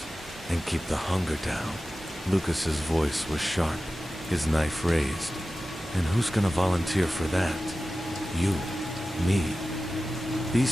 and keep the hunger down." Lucas's voice was sharp, his knife raised. "And who's gonna volunteer for that?" "You. Me.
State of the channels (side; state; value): both; normal; correlation 0.95